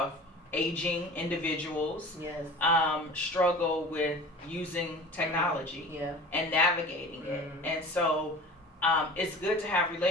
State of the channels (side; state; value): both; normal; correlation 0.39